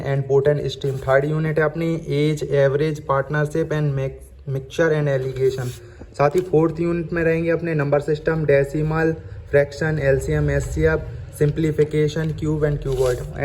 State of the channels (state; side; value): identical; both; correlation 1.00